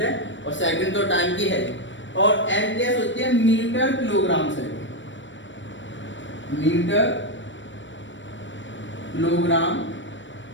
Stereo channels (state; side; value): late; right; 0.54 ms